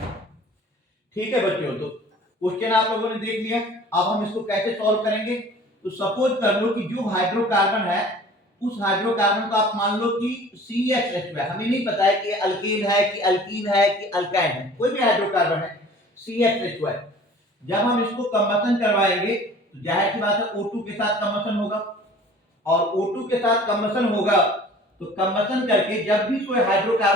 ठीक है बच्चों, तो क्वेश्चन आप लोगों ने देख लिया। अब हम इसको कैसे सॉल्व करेंगे? तो सपोज कर लो कि जो हाइड्रोकार्बन है उस हाइड्रोकार्बन को आप मान लो कि CHH है। हमें नहीं पता है कि अल्केन है कि अल्कीन है कि अल्काइन है, कोई भी हाइड्रोकार्बन है CHH है। जब हम इसको कंबशन करवाएंगे तो जाहिर सी बात है O2 के साथ कंबशन होगा और O2 के साथ कंबशन होगा तो कंबशन करके जब भी कोई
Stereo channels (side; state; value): both; normal; correlation 0.47